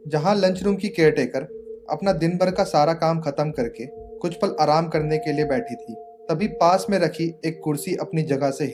जहां लंच रूम की केयरटेकर अपना दिन भर का सारा काम खत्म करके कुछ पल आराम करने के लिए बैठी थी। तभी पास में रखी एक कुर्सी अपनी जगह से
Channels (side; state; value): both; identical; correlation 1.00